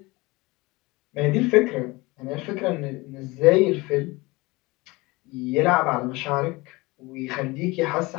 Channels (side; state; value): right; quieter; 22.9 dB